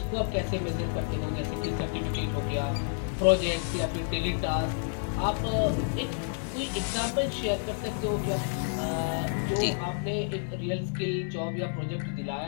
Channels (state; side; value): silent; right; 55 dB below the other